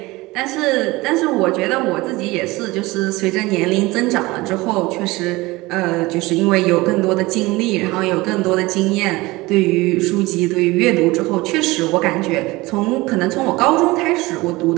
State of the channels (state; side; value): quieter; left; 21.2 dB